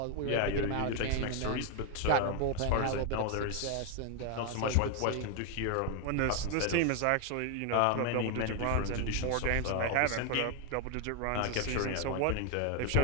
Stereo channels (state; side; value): different; both; correlation 0.01